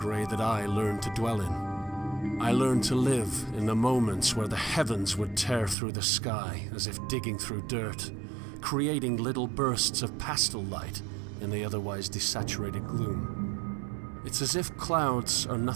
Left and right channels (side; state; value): left; drops out; at 5.8 s